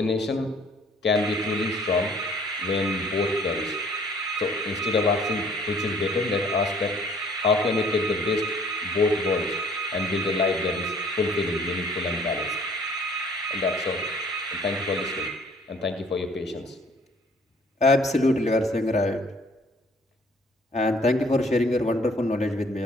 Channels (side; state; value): both; normal; correlation 0.57